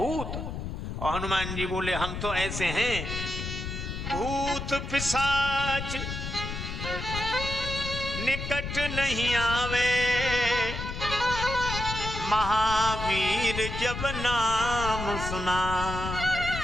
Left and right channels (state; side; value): noise; left; rumble, 6 dB below the sound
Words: और हनुमान जी बोले हम तो ऐसे हैं, भूत पिशाच निकट नहीं आवे, महावीर जब नाम सुना।